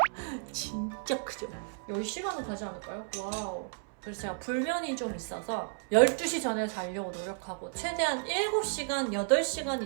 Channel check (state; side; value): silent; left; 56 dB below the other